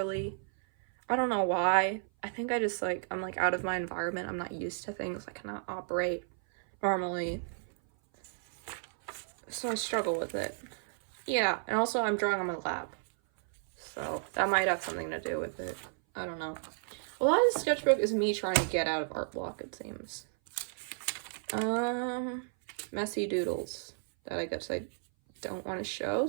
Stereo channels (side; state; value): left; silent; 56 dB below the other